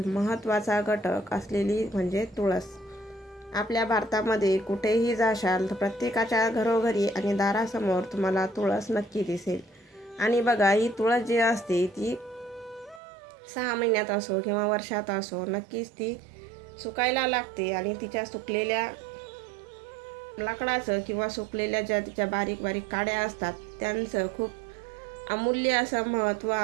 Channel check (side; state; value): left; drops out; at 13.0 s